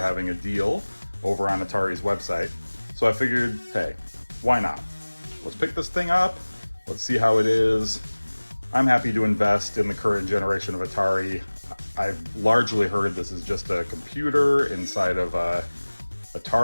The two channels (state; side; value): inverted; both; correlation -1.00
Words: a deal over on Atari's website. So I figured, hey, why not? Let's pick this thing up. Let's see how it is. I'm happy to invest in the current generation of Atari. I've largely heard this is just a computer inside of a